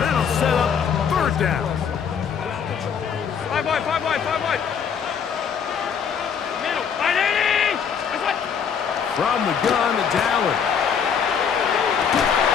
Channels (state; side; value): quieter; right; 7.1 dB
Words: that'll set up 3rd down. 5 wide, 5 wide, 5 wide. Middle, 580. From the gun, it's Allen.